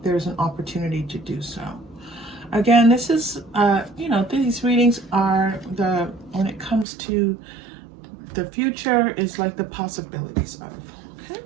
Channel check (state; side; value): drops out; left; at 6.9 s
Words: there's an opportunity to do so. Again, this is, these readings are when it comes to the future, is like the possibilities of. Okay.